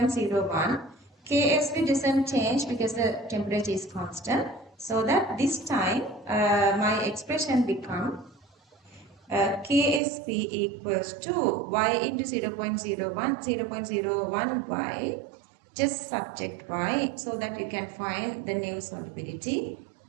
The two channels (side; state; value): left; drops out; at 10.0 s